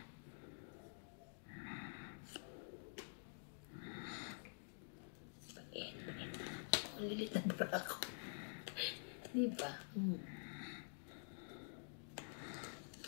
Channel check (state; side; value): silent; right; digital silence